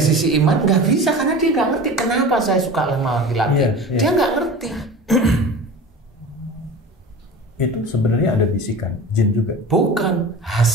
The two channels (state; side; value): normal; both; correlation 0.35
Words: iman nggak bisa karena dia nggak ngerti kenapa saya suka sama laki-laki. Dia nggak ngerti. Itu sebenarnya ada bisikan jin juga. Bukan